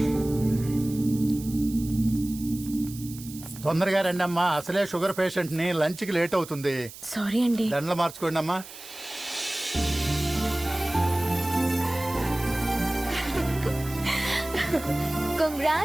తొందరగా రండి అమ్మా, అసలే షుగర్ పేషెంట్ ని, లంచ్ కి లేట్ అవుతుంది. సారీ అండి. దండలు మార్చుకోండి అమ్మా.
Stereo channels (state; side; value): noise; right; hiss, 15 dB below the sound